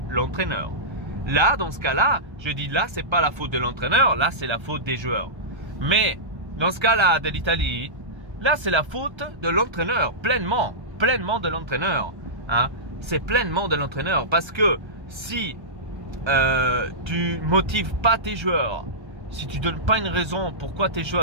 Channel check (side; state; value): left; late; 1.1 ms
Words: l'entraîneur. Là, dans ce cas-là, je dis là, c'est pas la faute de l'entraîneur, là c'est la faute des joueurs. Mais dans ce cas-là de l'Italie, là c'est la faute de l'entraîneur, pleinement de l'entraîneur. Hein? C'est pleinement de l'entraîneur parce que si tu motives pas tes joueurs, si tu donnes pas une raison pourquoi tes